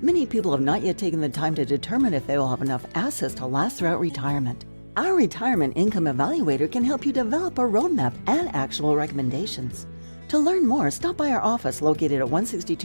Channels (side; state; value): both; inverted; correlation -1.00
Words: people have not yet taken the time to determine if they will have enough assets to last throughout retirement. Our Retirement Income Evaluator can help you develop a roadmap and actionable recommendations. To learn more, stop by our office located at